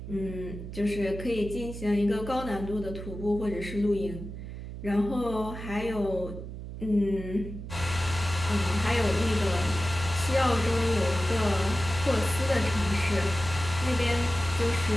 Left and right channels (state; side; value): noise; right; hum, 9 dB below the sound